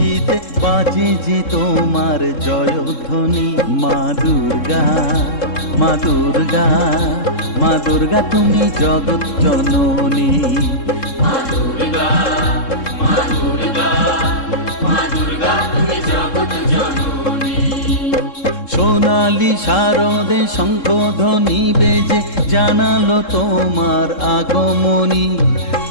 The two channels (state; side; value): late; right; 3.7 ms